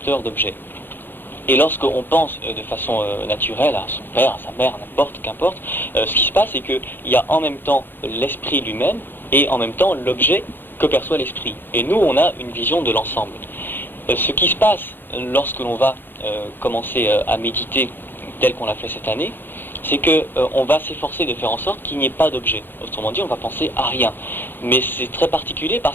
d'objet. Et lorsqu'on pense de façon naturelle à son père, à sa mère, qu'importe, ce qui se passe, c'est qu'il y a en même temps l'esprit lui-même et en même temps l'objet que perçoit l'esprit. Et nous, on a une vision de l'ensemble. Ce qui se passe lorsque l'on va commencer à méditer tel qu'on l'a fait cette année, c'est qu'on va s'efforcer de faire en sorte qu'il n'y ait pas d'objet. Autrement dit, on va penser à rien. Mais c'est très particulier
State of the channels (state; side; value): late; right; 0.097 ms